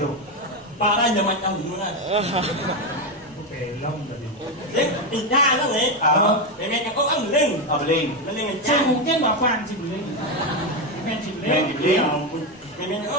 para nhà mình trong những này Belum tadi. đấy thì ra đó này để nghe có ăn lên Oh, beli. lên ngày Saya cha mungkin bapak si beli. Men si beli. Beli. Ngày có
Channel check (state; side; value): normal; both; correlation 0.10